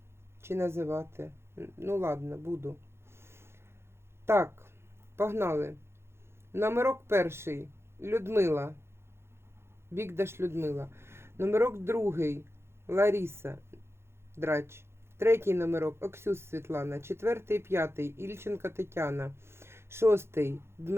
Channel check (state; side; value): late; left; 0.12 ms